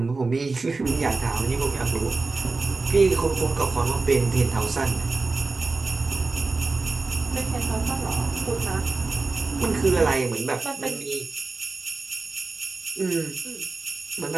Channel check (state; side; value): quieter; left; 3.8 dB